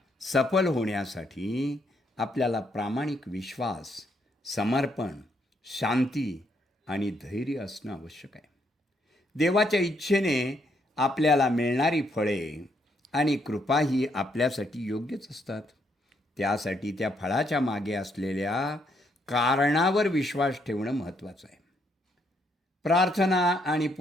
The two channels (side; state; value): both; normal; correlation 0.74